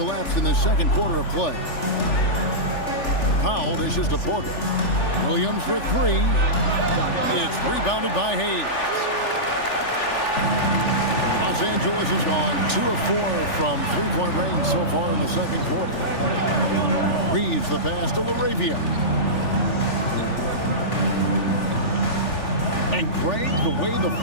in the second quarter of play. Powell dishes to Porter. Williams for three. It's rebounded by Hayes. Los Angeles has gone 2 of 4 from three-point range so far in the second quarter. Reeves the pass to LaRavia. And Greg, the way the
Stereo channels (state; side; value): late; right; 3.4 ms